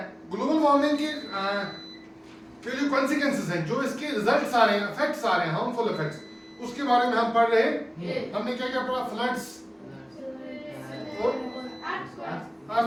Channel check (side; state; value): both; identical; correlation 1.00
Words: ग्लोबल वार्मिंग के जो कॉन्सिक्वेंसेस हैं, जो इसके रिजल्ट्स आ रहे हैं, इफेक्ट्स आ रहे हैं, हार्मफुल इफेक्ट्स, उसके बारे में हम पढ़ रहे हैं। हमने क्या क्या पढ़ा? फ्लड्स,